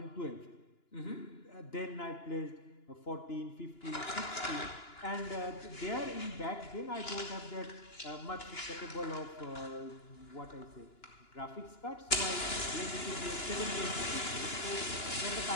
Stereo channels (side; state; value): right; late; 2.9 ms